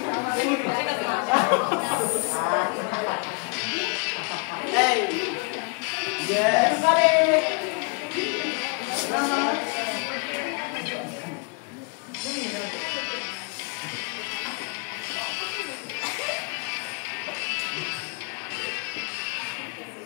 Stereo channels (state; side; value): quieter; right; 33.5 dB